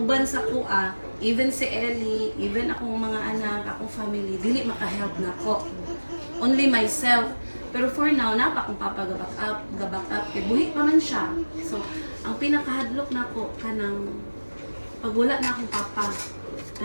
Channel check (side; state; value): both; inverted; correlation -1.00